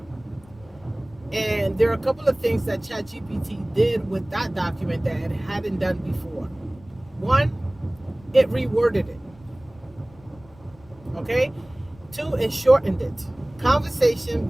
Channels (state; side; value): noise; left; rumble, 25 dB below the sound